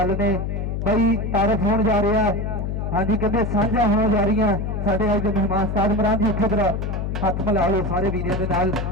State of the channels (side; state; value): left; noise; hum, 2 dB below the sound